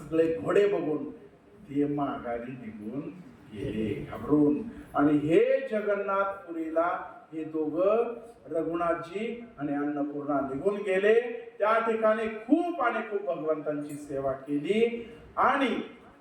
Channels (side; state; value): both; identical; correlation 1.00